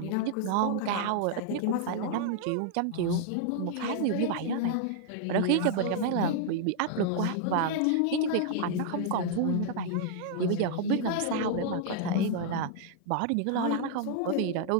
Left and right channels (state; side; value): different; both; correlation -0.01